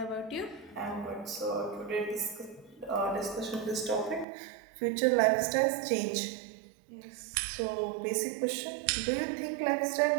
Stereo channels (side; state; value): left; drops out; at 4.2 s